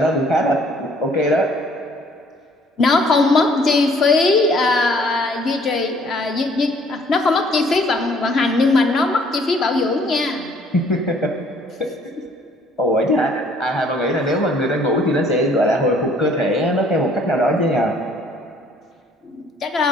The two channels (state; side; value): normal; both; correlation 0.60